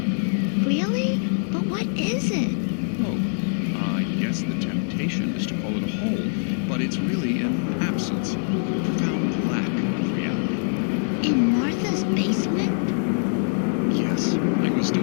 Really? But what is it? Oh, I guess the temptation is to call it a hole, but it's really an absence, a profound lack of reality. In Martha's basement? Yes, I was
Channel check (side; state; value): right; silent; 63 dB below the other